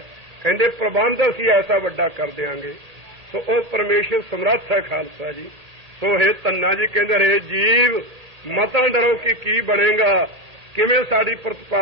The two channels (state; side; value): late; left; 1.8 ms